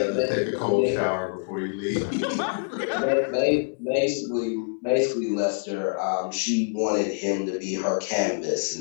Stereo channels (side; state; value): right; silent; 61 dB below the other